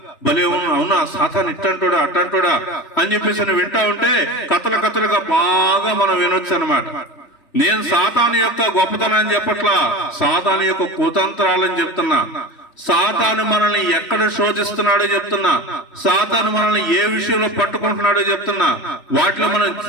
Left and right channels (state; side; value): late; right; 3.1 ms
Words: భలే అవునా సాతాను ఇట్టంటోడా అట్టంటోడా అని చెప్పేసి వింటా ఉంటే కథలుగా బాగా మనం వినొచ్చు అనమాట. నేను సాతాను యొక్క గొప్పతనాన్ని చెప్పట్లా, సాతాను యొక్క కుతంత్రాలని చెప్తున్నా. సాతాను మనల్ని ఎక్కడ శోధిస్తున్నాడో చెప్తున్నా, సాతాను మనల్ని ఏ విషయంలో పట్టుకుంటున్నాడో చెప్తున్నా. వాటిలో మనం